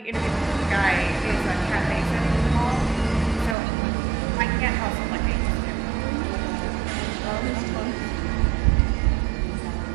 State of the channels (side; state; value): left; drops out; at 3.6 s